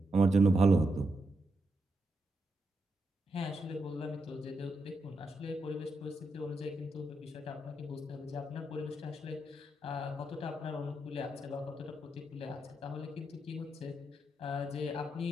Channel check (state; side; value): normal; both; correlation 0.84